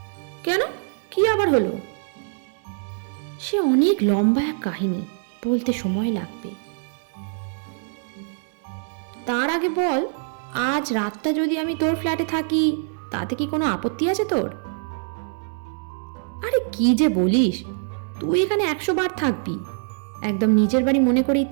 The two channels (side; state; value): left; silent; 63 dB below the other